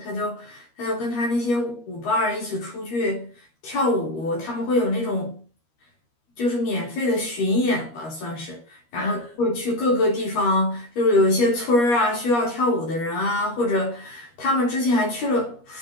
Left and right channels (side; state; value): right; late; 13 ms